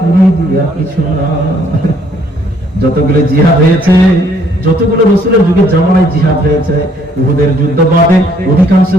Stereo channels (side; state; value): both; normal; correlation 0.65